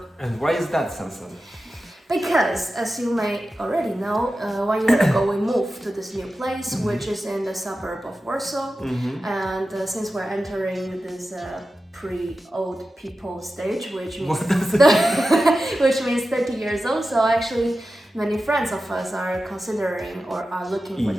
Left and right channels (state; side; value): normal; both; correlation 0.93